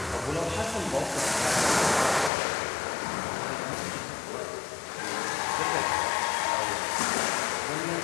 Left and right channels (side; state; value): right; drops out; at 2.3 s